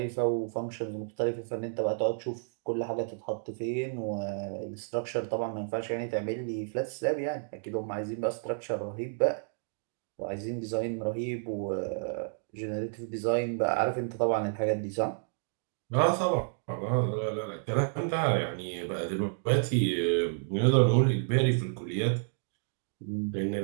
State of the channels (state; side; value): silent; left; digital silence